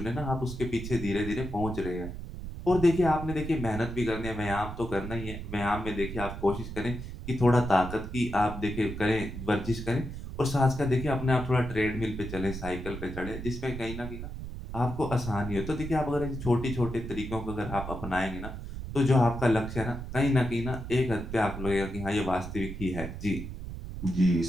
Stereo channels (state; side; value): noise; right; rumble, 8 dB below the sound